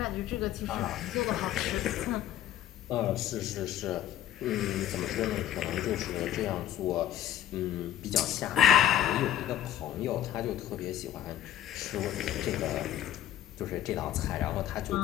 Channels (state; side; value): quieter; right; 12.0 dB